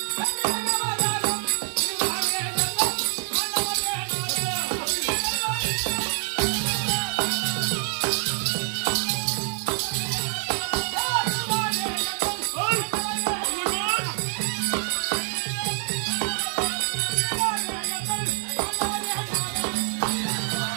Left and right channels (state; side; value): silent; left; 61 dB below the other